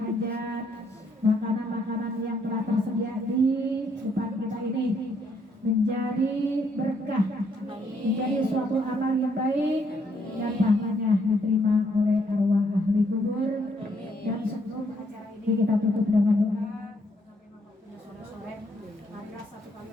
makanan-makanan yang telah tersedia di depan kita ini menjadi berkah, menjadi suatu amal yang baik dan pahalanya diterima oleh arwah ahli kubur. Dan sebelum acara ini kita tutup dengan doa. Sore-sore, marilah satu kali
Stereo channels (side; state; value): both; normal; correlation 0.71